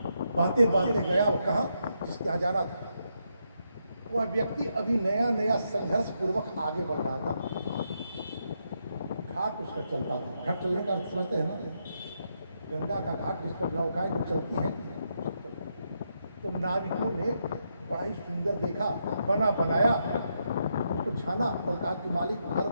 बातें बातें गया। वो कहाँ जिसके यहाँ जाना था, वह व्यक्ति अभी नया नया संघर्ष पूर्वक आगे बढ़ रहा था। घाट उसका चलता था। घाट चलने का अर्थ समझते हैं ना, गंगा का घाट जिस पर नौकाएं जो चलती हैं। तो नाविकों ने बड़ा ही सुंदर देखा, बना बनाया, उसको छाना और कहा कि मालिक घर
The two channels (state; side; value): inverted; both; correlation -0.81